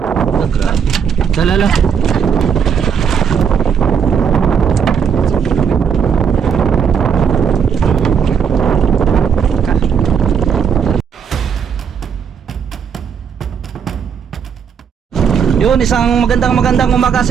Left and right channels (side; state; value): left; quieter; 7.2 dB